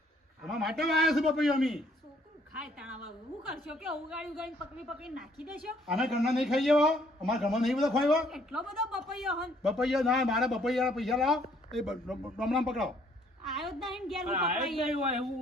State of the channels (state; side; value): normal; both; correlation 0.63